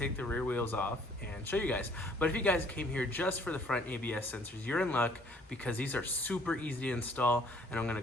the rear wheels off and show you guys. But if you guys came here just for the front ABS sensors, you're in luck because these are super easy to install, and I'm gonna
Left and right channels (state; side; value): normal; both; correlation 0.59